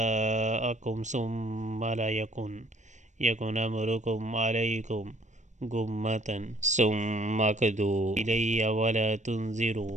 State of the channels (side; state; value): left; late; 0.35 ms